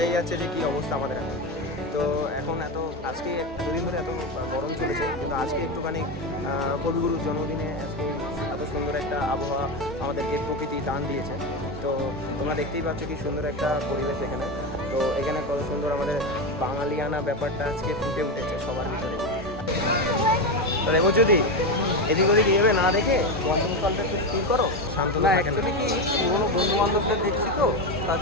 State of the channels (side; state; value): both; normal; correlation 0.15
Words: যাচ্ছে যে কী অবস্থা আমাদের এখন। তো এখন আজকে দুদিন ধরে এত গরম চলেছে, কিন্তু আজকে একটুখানি কবিগুরুর জন্মদিনে আজকে এত সুন্দর একটা আবহাওয়া আমাদেরকে প্রকৃতি দান দিয়েছে। তো তোমরা দেখতেই পাচ্ছ কি সুন্দর একটা পরিবেশ এখানে। তো এখানে কত সুন্দর আমাদের বাঙালিয়ানা ব্যাপারটা আজকে ফুটে উঠেছে সবার ভিতরে। তো দেখো যদি এদিক ওদিক এভাবে না দেখে বন্ধুকালটা একটু স্থির করো, শান্ত না অ্যাকচুয়ালি কি পুরোনো বন্ধু বান্ধবদের দেখছি তো, তার